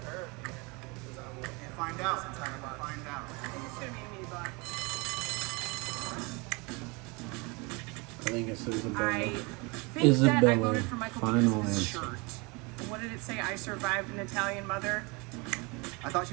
her? Find out. Find out. I think it's gonna be me, but I think it's Isabella. I think that I Isabella, voted for Michael final because of his answer. shirt. What did it say? I survived an Italian mother. I thought she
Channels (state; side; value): quieter; left; 28.0 dB